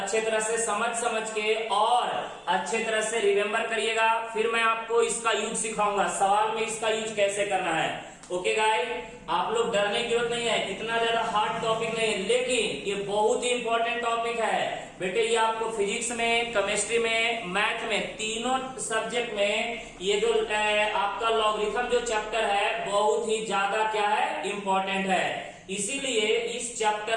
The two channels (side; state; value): both; identical; correlation 1.00